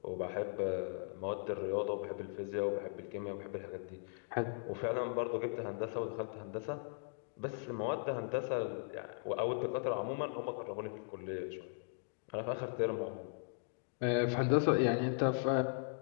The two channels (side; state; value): right; silent; digital silence